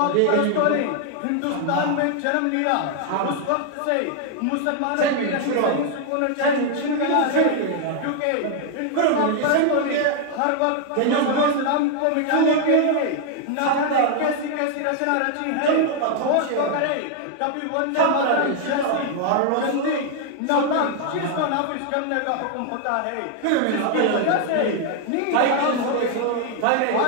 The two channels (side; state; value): both; different; correlation 0.00